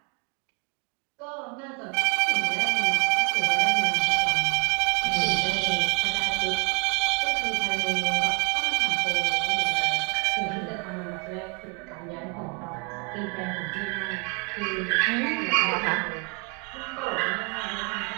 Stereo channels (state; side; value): quieter; left; 34.1 dB